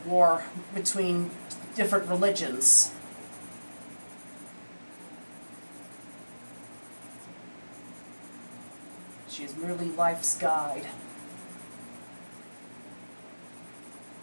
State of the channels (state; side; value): inverted; both; correlation -1.00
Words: between different religions. She is merely life's guide.